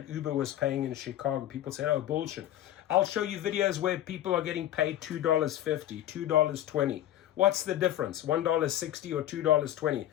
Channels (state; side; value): quieter; right; 12.7 dB